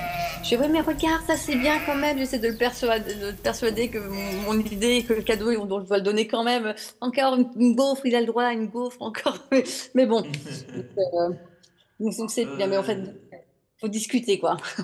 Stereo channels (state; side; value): identical; both; correlation 1.00